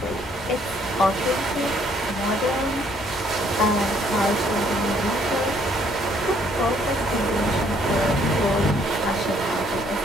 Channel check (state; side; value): normal; both; correlation 0.65